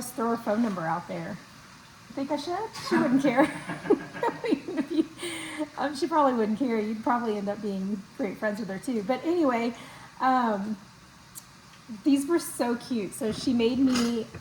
throw her phone number out there. You think I should? She wouldn't care. She probably wouldn't care. You'd probably end up being great friends with her too. But anyway, these were so cute. So she made me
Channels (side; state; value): both; identical; correlation 1.00